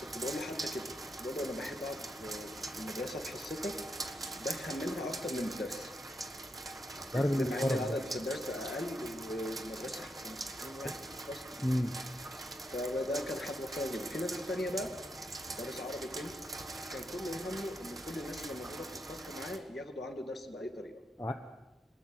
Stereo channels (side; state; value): both; normal; correlation 0.82